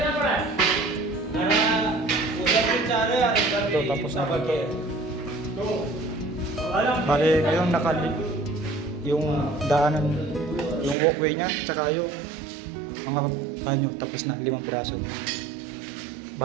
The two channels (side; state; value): left; drops out; at 11.0 s